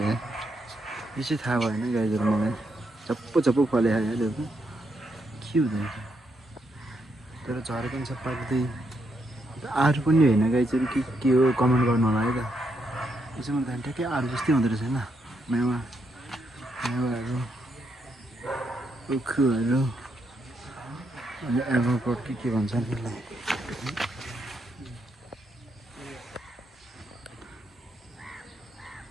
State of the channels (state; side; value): normal; both; correlation 0.79